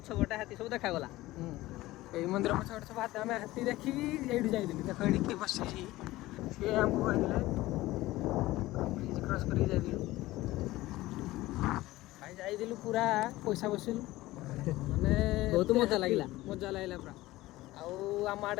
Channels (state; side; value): quieter; right; 17.8 dB